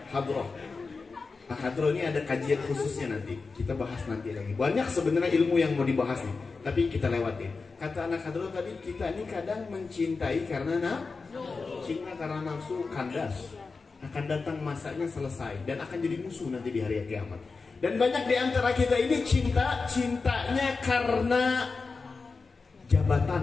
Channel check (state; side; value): quieter; right; 4.3 dB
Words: Hadroh. Nah, hadroh ini ada kajian khususnya nanti. Kita bahas nanti lagi. Banyak sebenarnya ilmu yang mau dibahas nih, tapi kita lewatin. Kata anak hadroh tadi, kita ini kadang mencintai karena cinta karena nafsu kandas. Akan datang masanya selesai dan akan jadi musuh nanti di hari kiamat. Dan banyak di antara kita ini cintanya karena